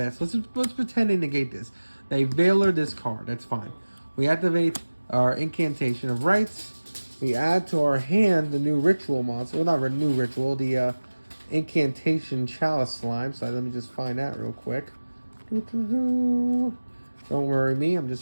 So let's pretend they negate this. They veiler this card, that's fine. We activate our Incantation of Rights. We add to our hand the new ritual monster. Well, not a new ritual, the Incantation Chalice Slime. So let me just find that real quick. Don't worry me, I'm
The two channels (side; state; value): both; inverted; correlation -1.00